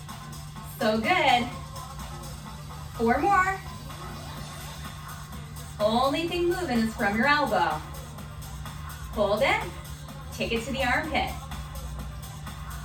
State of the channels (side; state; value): both; identical; correlation 1.00